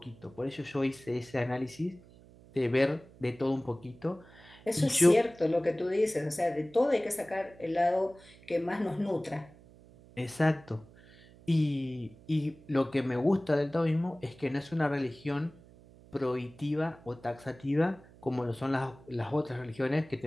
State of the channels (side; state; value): right; noise; hum, 23 dB below the sound